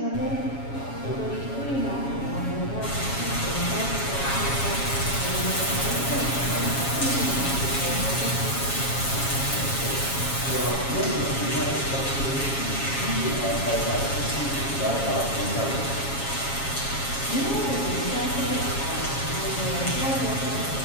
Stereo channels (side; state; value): right; late; 7.3 ms